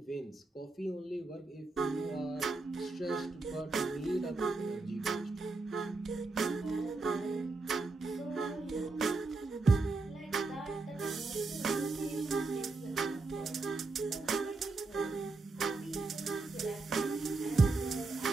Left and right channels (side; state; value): left; quieter; 3.5 dB